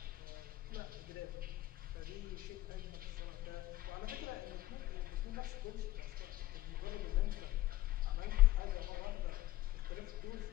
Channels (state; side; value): quieter; right; 15.8 dB